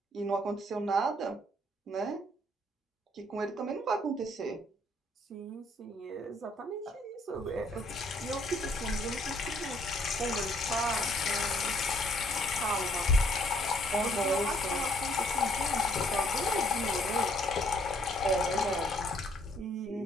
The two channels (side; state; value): both; normal; correlation 0.65